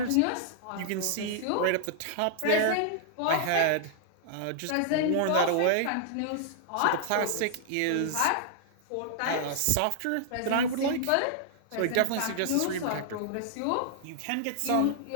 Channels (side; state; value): both; different; correlation -0.01